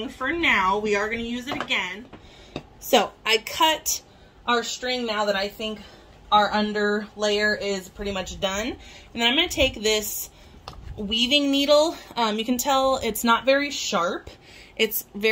for now. We are going to use it again. So I cut our string now that I think our under layer is pretty much done. And then I'm going to take this weaving needle. You can tell it's not very sharp. It's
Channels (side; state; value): both; identical; correlation 1.00